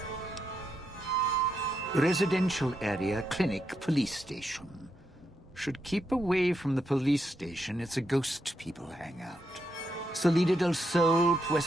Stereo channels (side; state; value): both; normal; correlation 0.82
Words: Residential area, clinic, police station. Should keep away from the police station. It's a ghost people hangout. Salida del Sol,